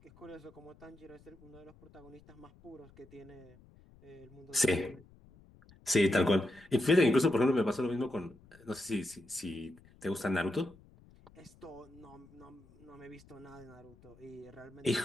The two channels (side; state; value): left; noise; rumble, 25 dB below the sound